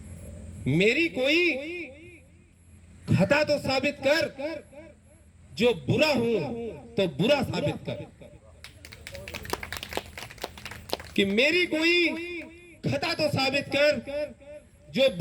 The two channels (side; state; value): both; identical; correlation 1.00